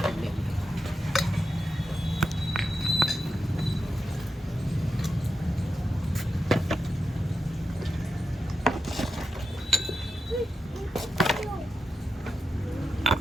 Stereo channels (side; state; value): both; normal; correlation 0.88